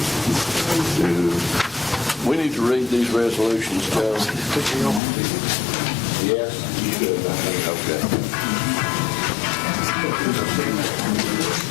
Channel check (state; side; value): drops out; right; at 5.0 s